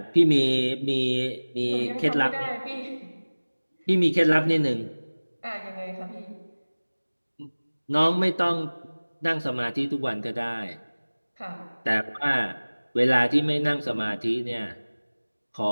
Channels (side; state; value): both; inverted; correlation -1.00